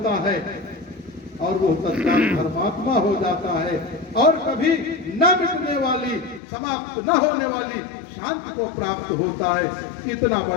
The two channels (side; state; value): right; drops out; at 6.4 s